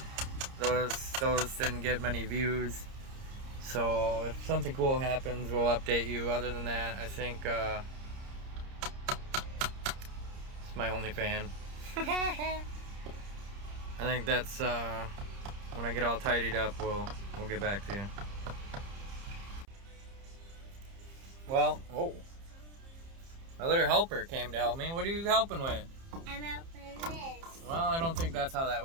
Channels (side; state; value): left; late; 30 ms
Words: Those didn't get many views. So if something cool happens, we'll update you. Other than that, I think it's my only fan. I think that's when I get all tidied up, we'll get back to you. Well, oh, my little helper came to help me. What are you helping with? I'm helping this. Well, I don't think that's how that